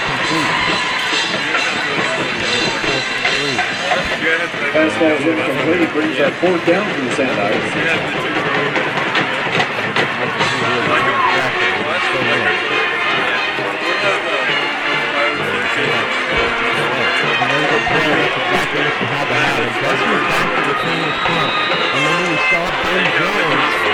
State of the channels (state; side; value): identical; both; correlation 1.00